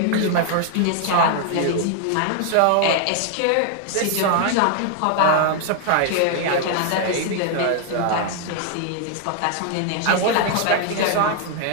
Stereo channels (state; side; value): different; both; correlation 0.00